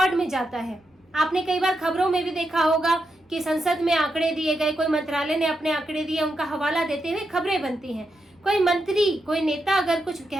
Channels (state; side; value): normal; both; correlation 0.85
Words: में जाता है। आपने कई बार खबरों में भी देखा होगा कि संसद में आंकड़े दिए गए, कोई मंत्रालय ने अपने आंकड़े दिए, उनका हवाला देते हुए खबरें बनती हैं। कोई मंत्री, कोई नेता अगर कुछ